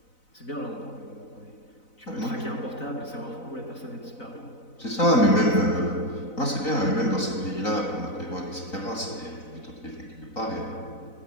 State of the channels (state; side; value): late; right; 4.0 ms